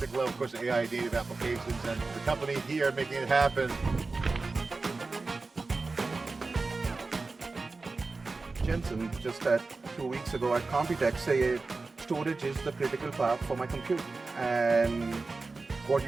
level, of course, AI native applications, and the company here making it happen. Jensen, just 2 weeks ago at Computex, say storage is the critical path for my compute. And what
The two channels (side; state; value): left; quieter; 3.8 dB